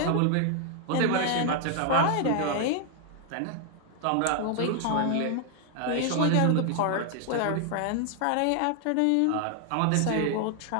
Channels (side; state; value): both; different; correlation 0.00